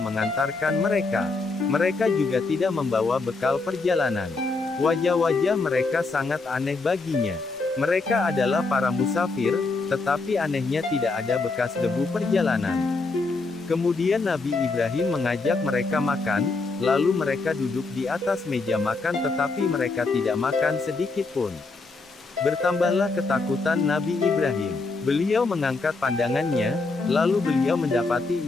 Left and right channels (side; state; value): right; quieter; 3.7 dB